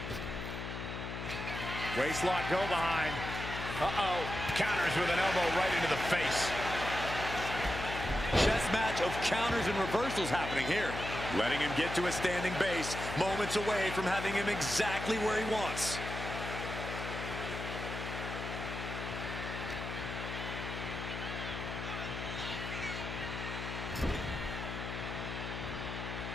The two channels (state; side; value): noise; left; hum, 6 dB below the sound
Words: Waistlock go behind. Uh-oh. Counters with an elbow right into the face. Chess match of counters and reversals happening here. Letting him get to a standing base, moments away from having him exactly where he wants.